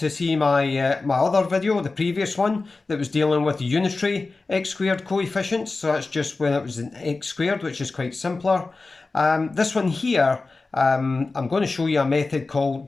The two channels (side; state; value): right; quieter; 3.7 dB